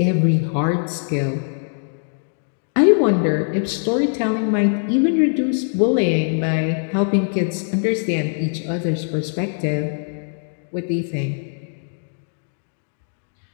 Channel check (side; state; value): right; silent; 62 dB below the other